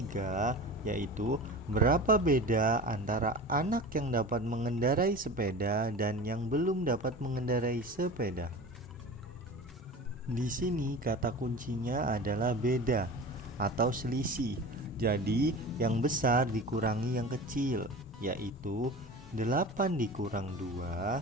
yaitu berapa beda antara anak yang dapat mengendarai sepeda dan yang belum dapat mengendarai sepeda? Di sini kata kuncinya adalah beda atau selisih. Jadi yang besar dikurangi yang kecil, yaitu 8 dikurang 2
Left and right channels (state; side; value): normal; both; correlation 0.34